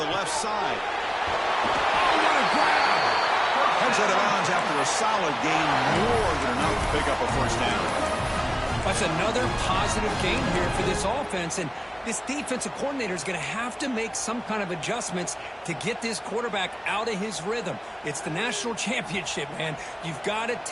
left side. Oh, what a grab! Heads out of bounds after a solid gain, more than enough to pick up a first down. That's another positive gain here for this offense, and this defensive coordinator is going to have to make some kind of adjustments to get this quarterback out of his rhythm. It's the national championship, man. You've got to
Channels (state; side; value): identical; both; correlation 1.00